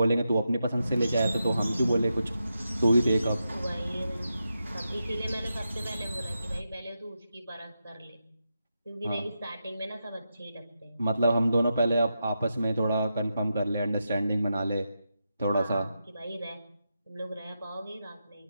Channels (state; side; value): inverted; both; correlation -0.87